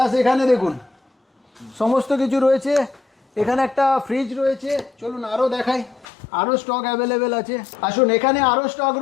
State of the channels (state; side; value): drops out; right; at 6.1 s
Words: এখানে দেখুন সমস্ত কিছু রয়েছে। এখানে একটা ফ্রিজ রয়েছে, চলুন আরও দেখাই, আরও স্টক অ্যাভেলেবেল আছে। আসুন এখানে আরও স্টক